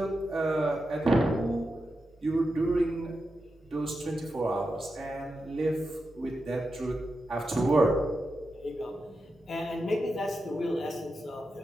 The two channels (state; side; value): normal; both; correlation 0.89